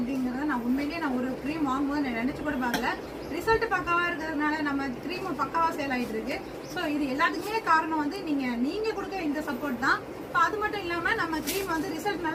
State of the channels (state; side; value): identical; both; correlation 1.00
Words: நான் உண்மையிலேயே ஒரு க்ரீம் வாங்கும்போது நான் நினச்சி கூட பார்க்கல. ரிசல்ட் பக்காவாக இருக்கிறதுனால நம்ம க்ரீம் பக்காவாக சேல் ஆகிட்டு இருக்கு. ஸோ இது எல்லாத்துக்குமே காரணம் வந்து நீங்கள் கொடுக்க இந்த சப்போர்ட் தான். இப்போ அது மட்டும் இல்லாமல் நம்ம க்ரீம் வந்து ரிசல்ட்